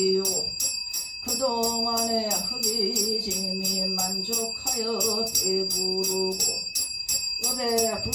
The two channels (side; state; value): both; identical; correlation 1.00